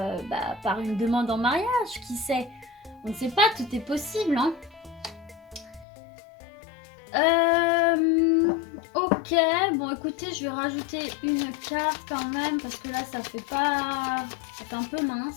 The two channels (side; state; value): right; drops out; at 5.9 s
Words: une demande en mariage, qui sait. On ne sait pas, tout est possible, hein. Ok, bon écoutez, je vais rajouter une carte quand même, parce que là ça fait un peu